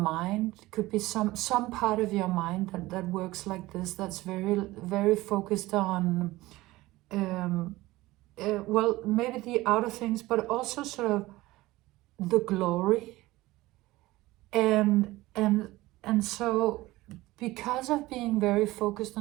It could be some part of your mind that works like this. That's very, very focused on well, maybe the outer things, but also sort of the glory. And so because of being very focused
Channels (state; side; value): quieter; left; 18.7 dB